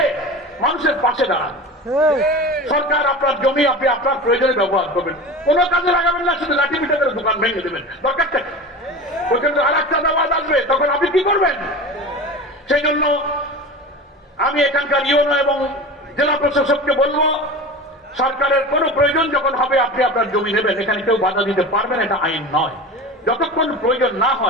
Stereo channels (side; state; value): both; normal; correlation 0.32